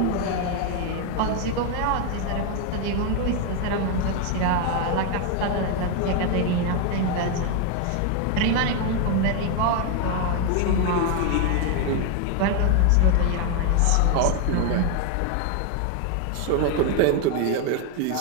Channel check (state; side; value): different; both; correlation 0.01